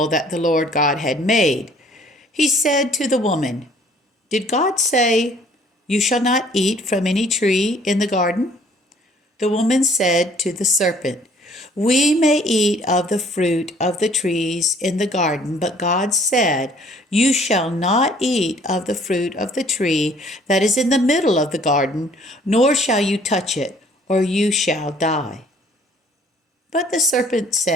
that the Lord God had made. He said to the woman, "Did God say, 'You shall not eat from any tree in the garden'?" The woman said to the serpent, "We may eat of the fruit of the trees in the garden, but God said, 'You shall not eat of the fruit of the tree that is in the middle of the garden, nor shall you touch it, or you shall die.'" But the serpent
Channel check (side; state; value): both; normal; correlation 0.58